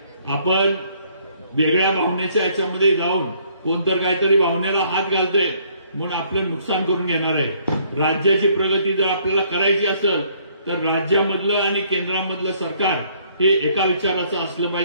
आपण वेगळ्या भावनेच्या याच्यामध्ये जाऊन कोणतर काहीतरी भावनेला हात घालतंय म्हणून आपलं नुकसान करून घेणार आहे. राज्याची प्रगती जर आपल्याला करायची असेल तर राज्यामधलं आणि केंद्रामधलं सरकार हे एका विचाराचं असलं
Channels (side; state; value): both; inverted; correlation -0.64